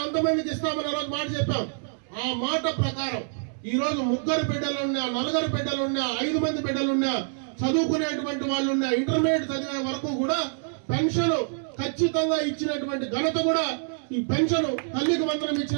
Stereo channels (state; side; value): silent; left; 61 dB below the other